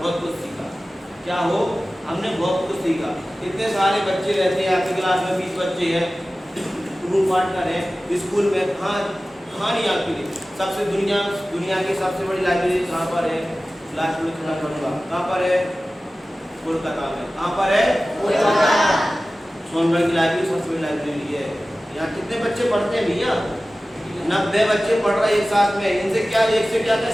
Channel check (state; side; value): normal; both; correlation 0.96